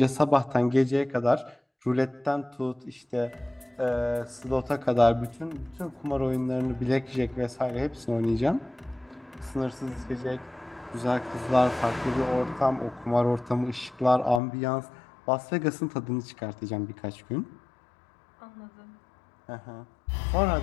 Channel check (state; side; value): drops out; right; at 14.4 s